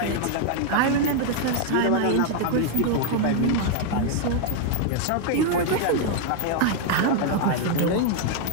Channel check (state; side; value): different; both; correlation 0.00